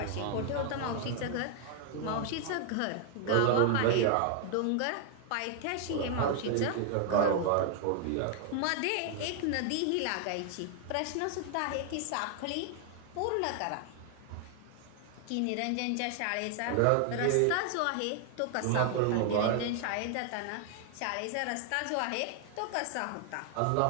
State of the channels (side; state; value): both; different; correlation 0.00